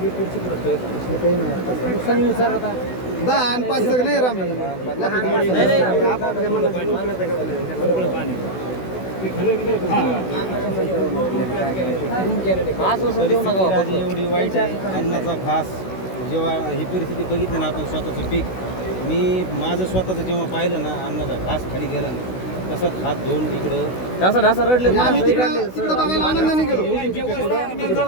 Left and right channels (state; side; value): late; right; 16 ms